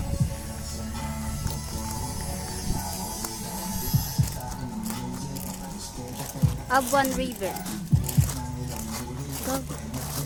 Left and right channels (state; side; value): identical; both; correlation 1.00